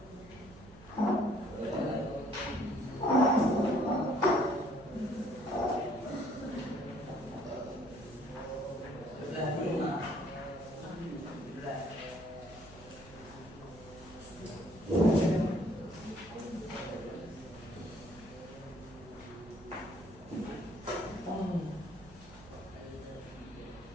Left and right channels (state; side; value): noise; right; hum, 20 dB below the sound